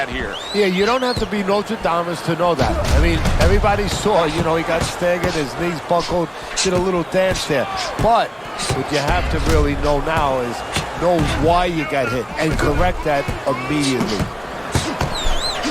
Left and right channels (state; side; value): identical; both; correlation 1.00